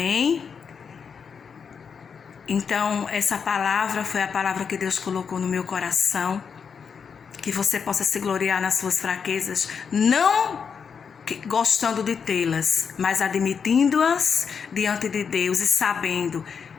Então, essa palavra foi a palavra que Deus colocou no meu coração. Que você possa se gloriar nas suas fraquezas, não gostando de tê-las, mas admitindo-as diante de Deus e sabendo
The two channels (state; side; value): quieter; right; 6.3 dB